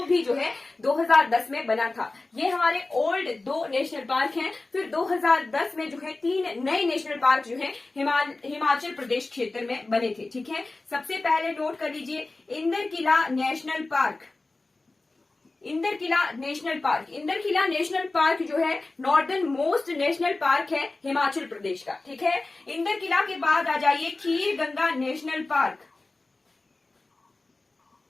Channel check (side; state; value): right; quieter; 3.3 dB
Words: भी जो है 2010 में बना था। ये हमारे ओल्ड 2 नेशनल पार्क हैं। फिर 2010 में जो है 3 नए नेशनल पार्क जो है हिमाचल प्रदेश क्षेत्र में बने थे, ठीक है। सबसे पहले नोट कर लीजिए Inderkilla national park. Inderkilla national park, Inderkilla national park जो है नॉर्दर्न मोस्ट नेशनल पार्क है हिमाचल प्रदेश का, ठीक है। इंदरकिला के बाद आ जाइए खीर गंगा नेशनल पार्क,